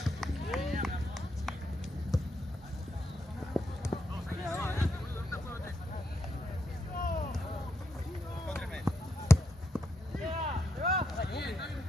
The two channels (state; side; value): normal; both; correlation 0.80